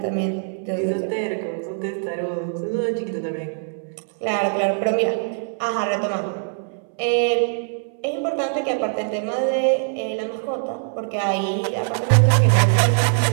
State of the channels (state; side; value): silent; left; 64 dB below the other